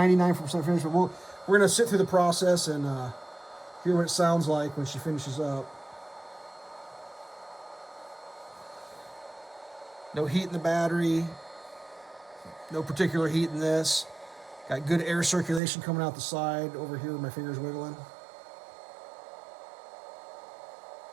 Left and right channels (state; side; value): drops out; left; at 15.6 s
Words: finished, but we're going to sit through the process and hear what it sounds like when she finishes up. No heat in the battery. No particular heat in this. Got good air circulation coming out the side over here where my finger's wiggling.